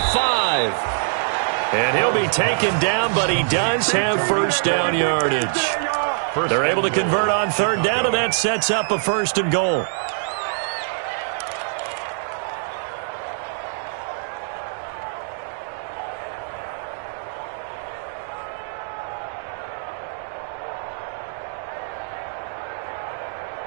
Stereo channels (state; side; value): silent; left; digital silence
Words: And he'll be taken down, but he does have first down yardage. They're able to convert on third down, and that sets up a 1st and goal.